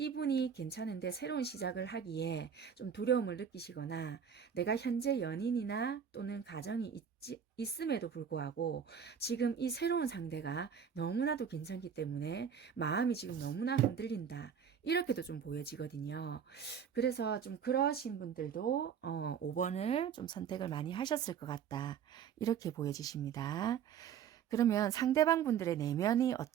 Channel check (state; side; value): quieter; left; 7.7 dB